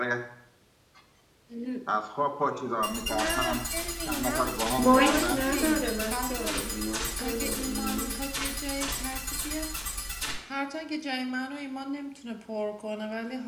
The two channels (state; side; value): identical; both; correlation 1.00